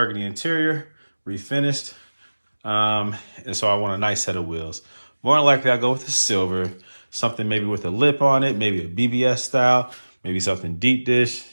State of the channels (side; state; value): both; inverted; correlation -1.00